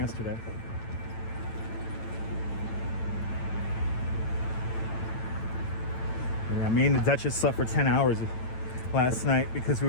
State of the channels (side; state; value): right; late; 9.0 ms